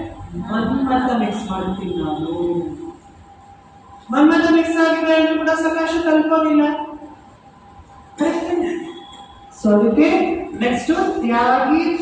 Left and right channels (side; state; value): both; identical; correlation 1.00